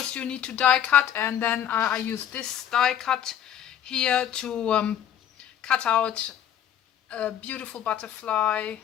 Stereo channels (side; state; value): right; quieter; 10.2 dB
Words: you need to die cut, and then I use this die cut here to cut out a beautiful butterfly